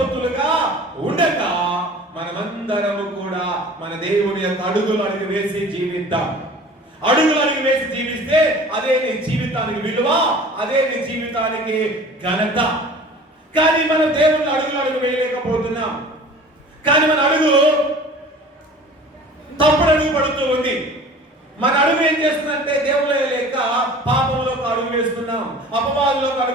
ఉండగా మనమందరము కూడా మన దేవుని యొక్క అడుగులు వేసి జీవిద్దాం. అడుగులు వేసి జీవిస్తే అదే నీ జీవితానికి విలువ, అదే నీ జీవితానికి ఘనత. కానీ మనం దేవుని అడుగు వేయలేకపోతున్నాం. కానీ మన అడుగు తప్పుడు అడుగు పడుతూ ఉంది. మన అడుగు ఏం చేస్తుందంటే దేవుడు లేక పాపంలోకి అడుగు వేస్తున్నాం, అపవాదులోకి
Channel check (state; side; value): normal; both; correlation 0.44